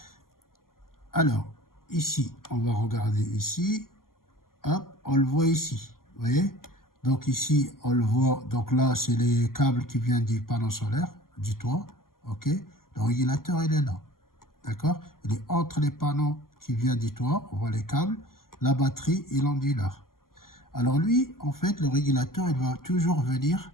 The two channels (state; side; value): late; right; 0.91 ms